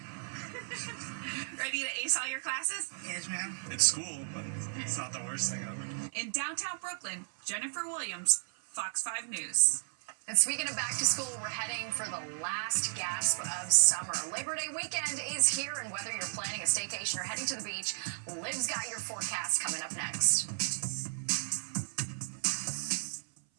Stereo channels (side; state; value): left; silent; 55 dB below the other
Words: Ready to ace all your classes? Yes, ma'am. It's school, but it's not the worst thing ever. In downtown Brooklyn, Jennifer Williams, Fox 5 News. And speaking of back to school, we're heading for the last gasp of summer. Labor Day weekend is here, and whether you're planning a staycation or heading to the beach, Liv's got your forecast coming up next.